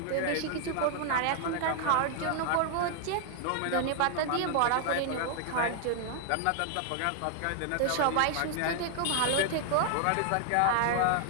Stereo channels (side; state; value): both; different; correlation 0.00